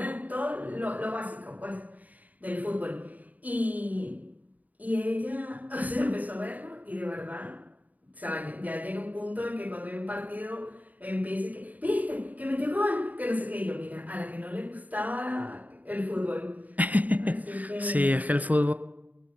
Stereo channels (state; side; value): late; left; 0.076 ms